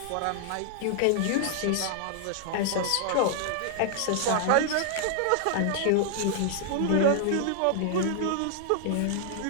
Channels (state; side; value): different; both; correlation -0.01